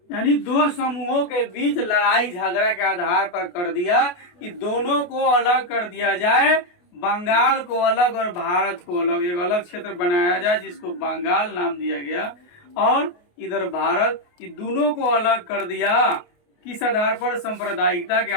यानी दो समूहों के बीच लड़ाई झगड़ा के आधार पर कर दिया कि दोनों को अलग कर दिया जाए, बंगाल को अलग और भारत को अलग। एक अलग क्षेत्र बनाया जाए जिसको बंगाल नाम दिया गया और इधर भारत, कि दोनों को अलग कर दिया किस आधार पर? सांप्रदायिकता के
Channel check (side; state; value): right; late; 28 ms